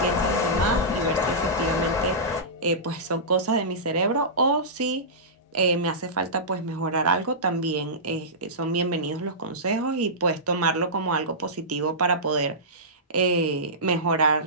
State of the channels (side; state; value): both; normal; correlation -0.17